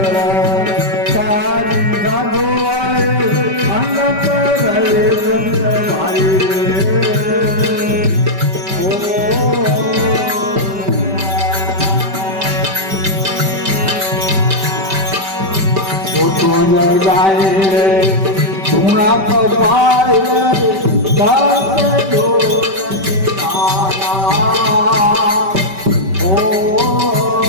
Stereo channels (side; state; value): left; late; 5.2 ms